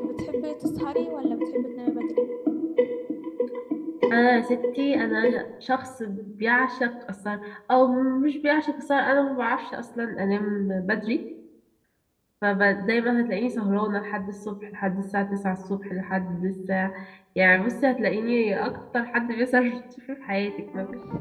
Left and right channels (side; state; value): both; identical; correlation 1.00